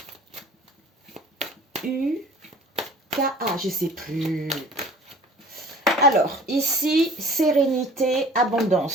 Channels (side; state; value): both; normal; correlation 0.47